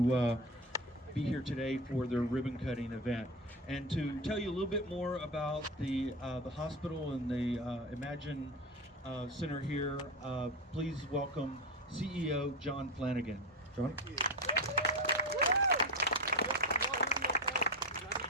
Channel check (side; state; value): both; normal; correlation 0.21